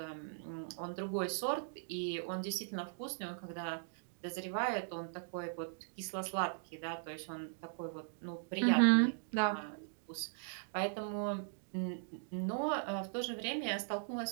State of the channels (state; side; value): silent; left; digital silence